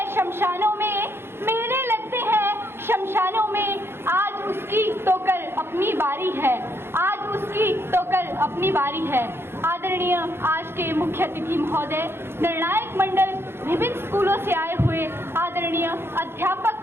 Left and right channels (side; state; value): left; late; 0.11 ms